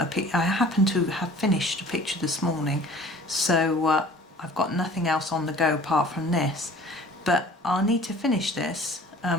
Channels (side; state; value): both; normal; correlation 0.48